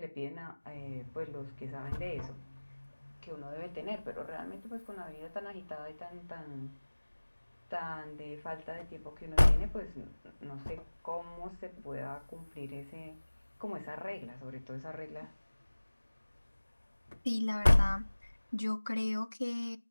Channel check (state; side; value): inverted; both; correlation -1.00